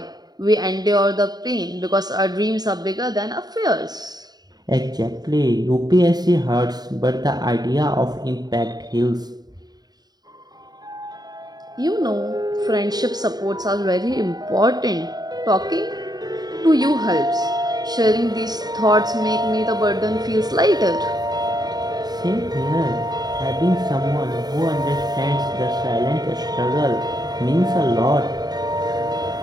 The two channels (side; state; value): left; late; 0.19 ms